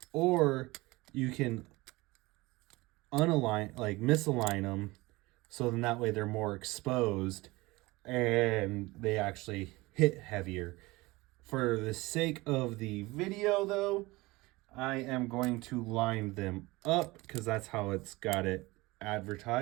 or you can misalign them, so then that way they're more exposed and they actually hit heavier. For the sake of the video though, I am going to line them up because that's how it's got it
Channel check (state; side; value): quieter; left; 21.6 dB